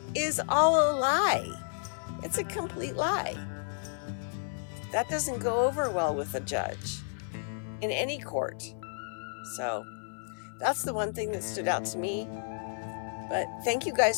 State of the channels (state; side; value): silent; right; 57 dB below the other